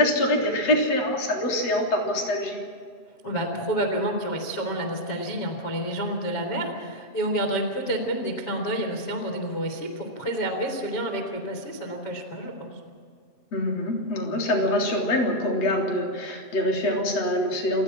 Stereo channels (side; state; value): right; late; 7.2 ms